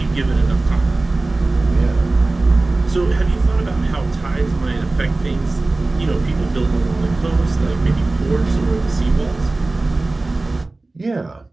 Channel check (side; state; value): left; quieter; 3.1 dB